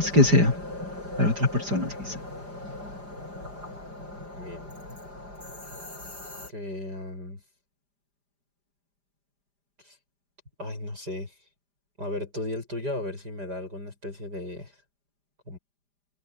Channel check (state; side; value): late; left; 5.0 ms